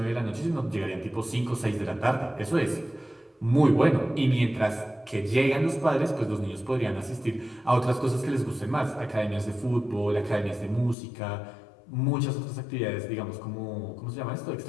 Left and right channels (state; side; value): drops out; right; at 11.0 s